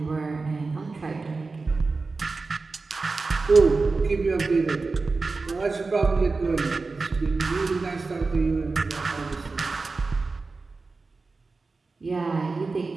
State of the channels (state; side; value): quieter; left; 3.9 dB